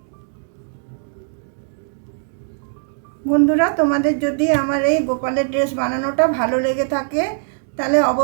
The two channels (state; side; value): silent; left; digital silence